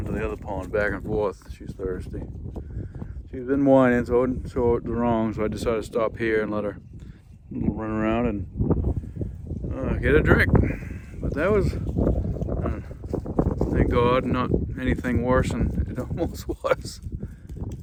to the other pond, back and forth. She's thirsty. She's been whining, so I wouldn't show it wrong, so I decided to stop here and let her run around and get a drink. But that was, thank God, not anything worse than it almost was.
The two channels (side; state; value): both; identical; correlation 1.00